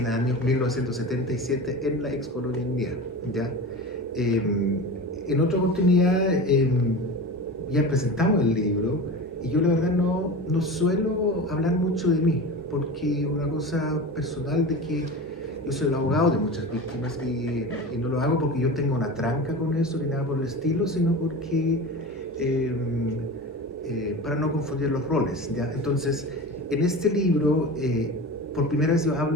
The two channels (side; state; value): both; normal; correlation 0.30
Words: el año 1977 en la ex colonia India, ¿ya? En otra oportunidad ya presentamos el libro y yo la verdad no suelo hablar mucho de mí, porque una cosa personal de que yo soy el abogado de muchas víctimas y no lo hago porque yo tenga una tranca con eso ni nada por el estilo, sino porque para no confundir los roles, ¿ya? Entonces, en este libro, por primera vez yo